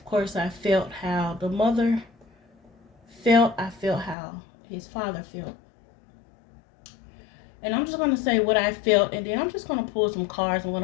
course, I felt how the mother felt. I felt how his father felt. And I'm just going to say what I felt, and then I'm just going to pull some cards. I'm going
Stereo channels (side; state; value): right; drops out; at 4.2 s